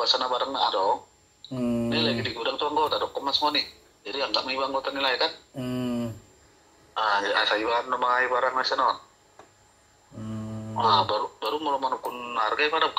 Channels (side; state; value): both; identical; correlation 1.00